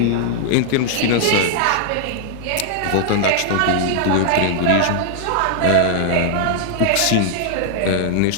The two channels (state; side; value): different; both; correlation 0.00